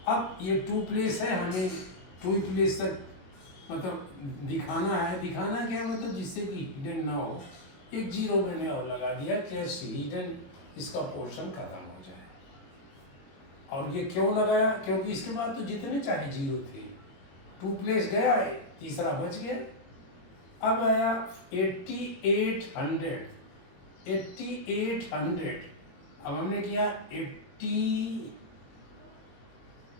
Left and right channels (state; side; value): late; right; 22 ms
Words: अब ये 2 प्लेस है, हमें 2 प्लेस तक मतलब दिखाना है। दिखाना क्या है मतलब, जिससे कि हिडन ना हो। 1 0 मैंने और लगा दिया, कैसे हिडन इसका पोर्शन खत्म हो जाए। और ये क्यों लगाया? क्योंकि इसके बाद तो जितने चाहे 0 थे, 2 प्लेस गया है, तीसरा बच गया। अब आया 8800। अब हमने किया